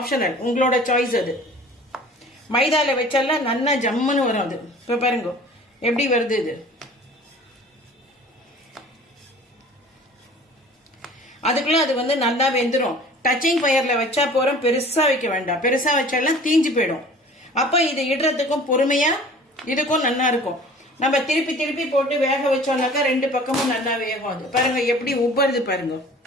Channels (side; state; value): both; normal; correlation 0.46